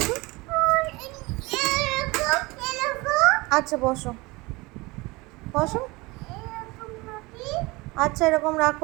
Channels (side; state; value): left; quieter; 23.3 dB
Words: আচ্ছা বসো বসো। আচ্ছা এরকম